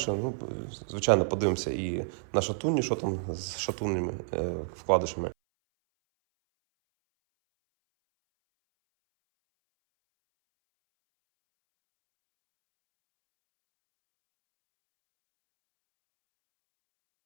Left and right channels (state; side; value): silent; left; 58 dB below the other